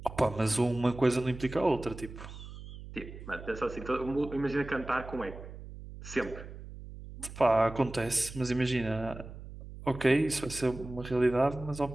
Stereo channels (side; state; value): right; noise; hum, 13 dB below the sound